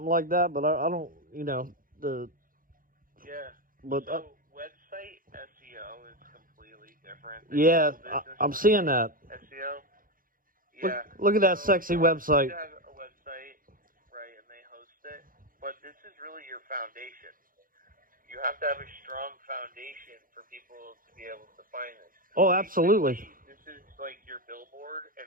like that. But I don't, But website SEO is completely different. Yeah, I'm seeing that. SEO. Yeah. Look at that sexy website. You have a website, right, and they host it, but this is really your foundation. You have to have a strong foundation for people to be able to find this. Oh, absolutely. This is like your billboard,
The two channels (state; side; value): late; left; 0.40 ms